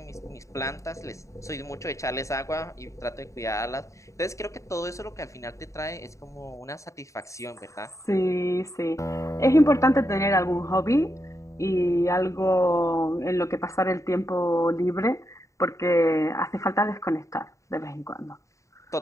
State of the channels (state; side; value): late; right; 0.15 ms